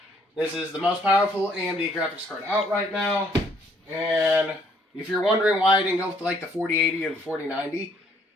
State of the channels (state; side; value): normal; both; correlation 0.65